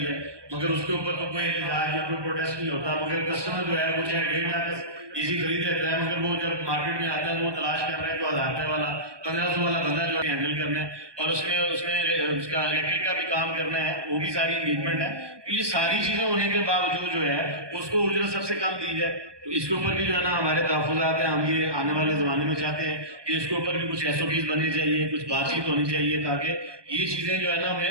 है, मगर उसके ऊपर तो कोई इलाज या कोई प्रोटेस्ट नहीं होता, मगर कस्टमर जो है वो चाहे 1.5 लाख एसी खरीद लेता है, मगर वो जब मार्केट में आता है वो तलाश कर रहा है जो 1000 रुपये वाला 1500 वाला बंदा जो है हैंडल करना है और उसमें उसमें उसका इलेक्ट्रिक का भी काम करना है, वो भी सारी इंगेजमेंट है। तो ये सारी चीज़ें होने के बावजूद जो है उसको उजरत सबसे कम दी जाए, तो इसके ऊपर भी जो है ना हमारे तहफ़्फ़ुज़ात हैं, हम ये आने वाले ज़माने में चाहते हैं कि इसके ऊपर भी कुछ एसओपीज़ बननी चाहिए, कुछ बातचीत होनी चाहिए ताकि ये चीज़ें जो है ना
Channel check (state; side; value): late; left; 1.2 ms